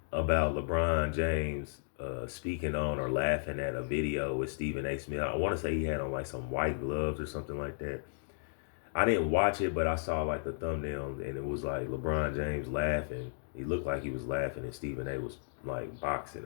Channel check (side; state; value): right; silent; digital silence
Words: about LeBron James speaking on or laughing at a video with Stephen A. Smith. I want to say he had on like some white gloves or something like that. I didn't watch it, but I saw like the thumbnail and it was like LeBron James laughing. He looked like he was laughing and Stephen A. was like boxing